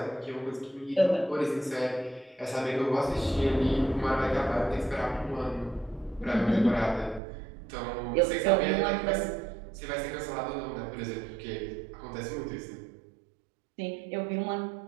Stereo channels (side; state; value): left; drops out; at 7.2 s